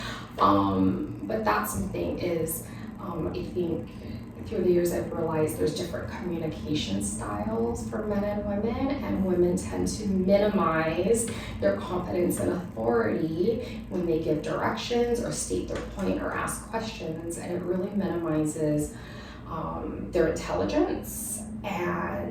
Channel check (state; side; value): identical; both; correlation 1.00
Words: But that's something is, I think through the years I've realized there's different communication styles for men and women tend to minimize their confidence and authority when they give directions or state their point or ask questions, and it really minimizes their intelligence